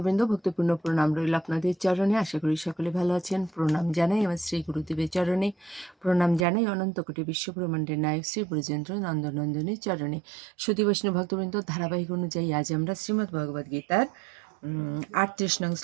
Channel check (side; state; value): left; drops out; at 6.5 s